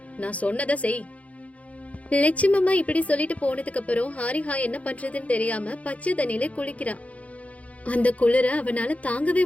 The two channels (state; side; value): late; right; 0.066 ms